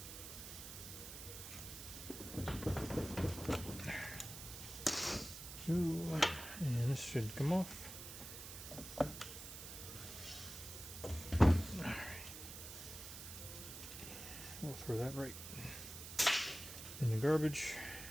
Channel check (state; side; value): noise; right; hiss, 10 dB below the sound